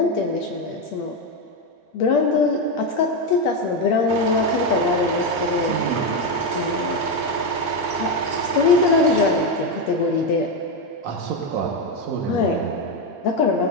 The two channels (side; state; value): both; normal; correlation 0.08